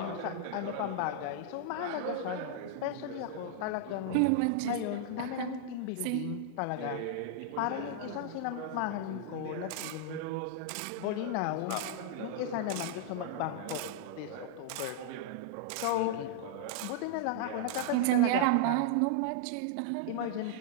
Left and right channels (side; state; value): both; different; correlation -0.01